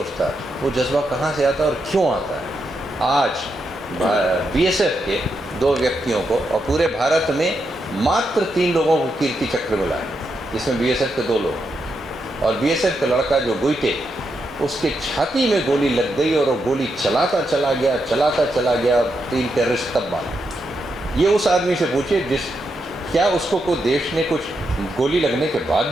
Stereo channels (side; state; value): both; normal; correlation 0.83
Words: वो जज्बा कहाँ से आता है और क्यों आता है. आज BSF के 2 व्यक्तियों को और पूरे भारत में मात्र 3 लोगों को कीर्ति चक्र मिला है, जिसमें BSF के 2 लोग और BSF का लड़का जो गुइटे, उसके छाती में गोली लग गई और वो गोली चलाता चला गया 3 टेररिस्ट तब मारा. ये उस आदमी से पूछिए क्या उसको कोई देश ने कुछ गोली लगने के बाद